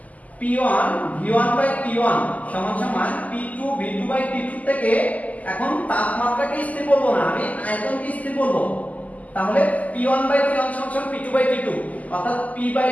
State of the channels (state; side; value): late; right; 0.075 ms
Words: p1 v1 বাই t1 সমান সমান p2 v2 বাই t2 থেকে এখন তাপমাত্রাকে স্থির করব না, আমি আয়তনকে স্থির করব, তাহলে p1 বাই t1 সমান সমান p2 বাই t2, অর্থাৎ p বাই